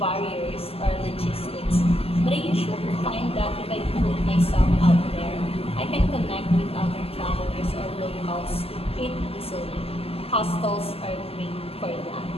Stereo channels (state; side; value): late; right; 0.28 ms